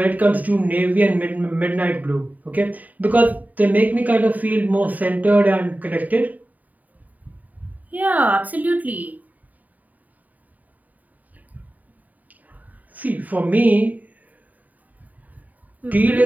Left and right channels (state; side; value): late; left; 0.077 ms